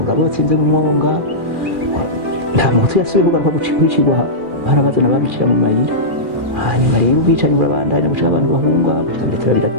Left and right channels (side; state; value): left; late; 2.4 ms